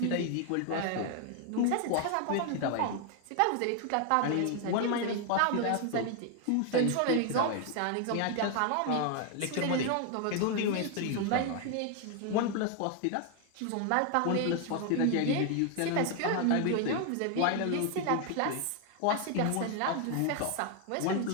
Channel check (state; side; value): different; both; correlation 0.00